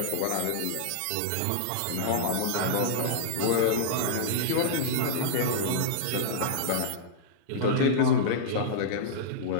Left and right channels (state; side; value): different; both; correlation -0.03